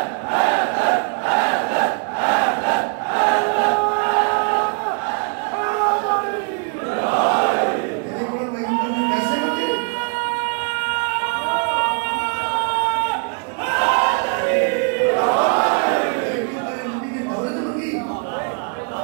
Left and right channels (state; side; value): quieter; left; 38.3 dB